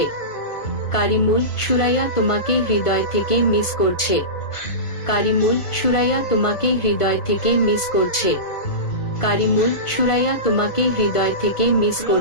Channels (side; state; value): right; late; 1.4 ms